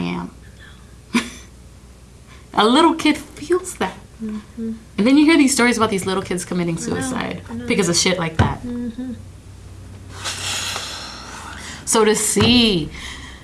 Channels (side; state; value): both; identical; correlation 1.00